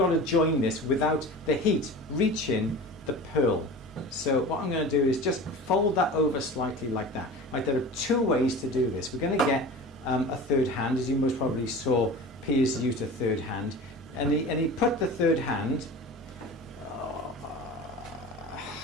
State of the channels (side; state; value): both; normal; correlation 0.35